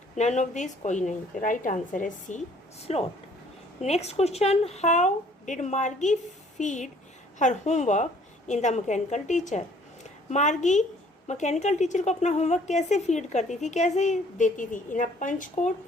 नन ऑफ दिस, कोई नहीं। तो राइट आंसर है C, slot. Next question, how did Margie feed her homework in the mechanical teacher? Margie mechanical teacher को अपना होमवर्क कैसे फीड करती थी, कैसे देती थी? इन अ पंच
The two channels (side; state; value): both; normal; correlation 0.58